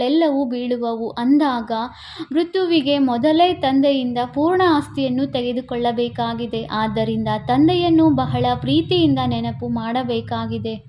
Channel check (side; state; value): both; identical; correlation 1.00